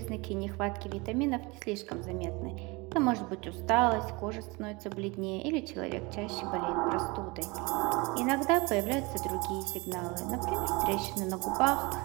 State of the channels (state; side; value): quieter; left; 25.8 dB